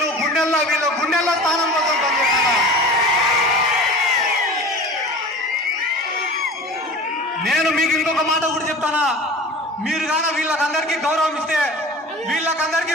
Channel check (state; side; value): normal; both; correlation 0.38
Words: వీళ్ళ గుండెల్లో స్థానం కోసం పనిచేయాలన్నా. నేను మీకు ఇంకొక మాట కూడా చెప్తానా, మీరు గాన వీళ్ళకందరికీ గౌరవం ఇస్తే, వీళ్ళకందరికీ